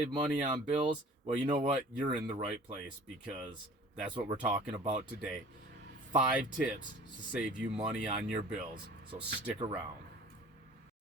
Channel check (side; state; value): both; normal; correlation 0.46